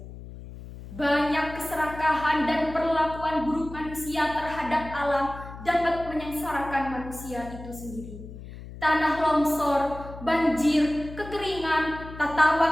Banyak keserakahan dan perlakuan buruk manusia terhadap alam dapat menyengsarakan manusia itu sendiri. Tanah longsor, banjir, kekeringan, tata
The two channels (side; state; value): left; noise; hum, 14 dB below the sound